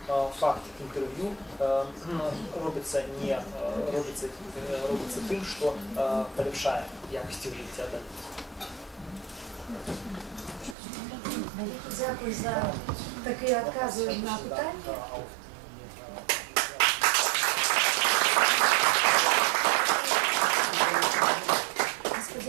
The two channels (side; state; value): left; drops out; at 10.8 s